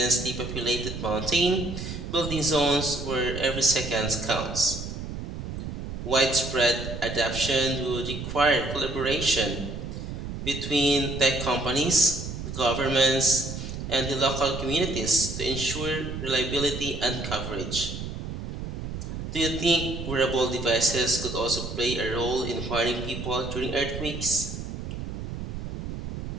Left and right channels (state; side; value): noise; right; rumble, 6 dB below the sound